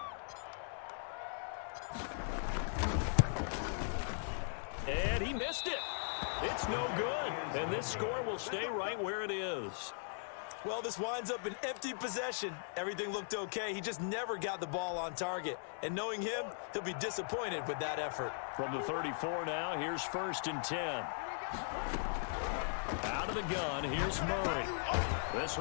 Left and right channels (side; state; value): right; silent; digital silence